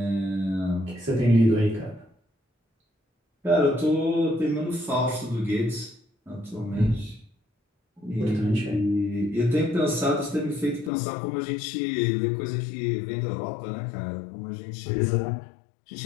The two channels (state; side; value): drops out; right; at 10.9 s